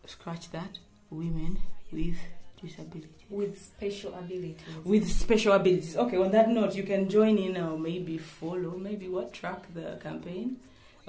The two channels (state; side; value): identical; both; correlation 1.00